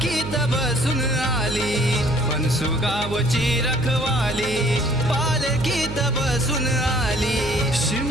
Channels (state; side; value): noise; right; hum, 9 dB below the sound